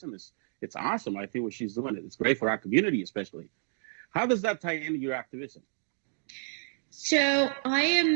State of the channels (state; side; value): silent; left; digital silence